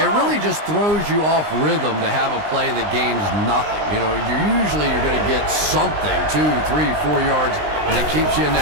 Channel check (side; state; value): left; late; 19 ms